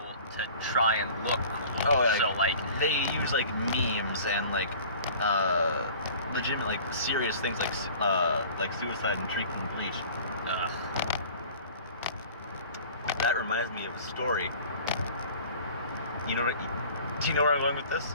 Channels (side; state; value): both; inverted; correlation -0.45